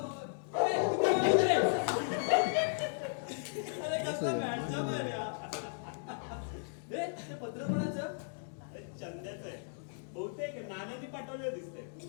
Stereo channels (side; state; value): right; silent; digital silence